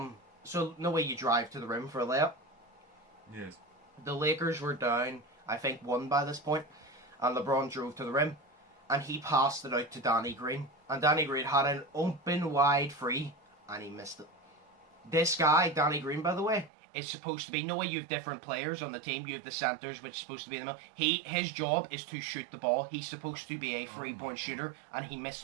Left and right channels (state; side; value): drops out; left; at 16.7 s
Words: no way you drive to the rim for a layup. Yes. The Lakers were down, I think, 1 by this point, and LeBron drove to the rim, and he passed it out to Danny Green. And Danny Green had an open wide free, and he missed it. This guy, Danny Green, by the way, is supposed to be, no way you have different players on the team, you have the centers, which is supposed to be in the middle. His job is to shoot the ball. He's supposed to be a 3-point shooter, and he missed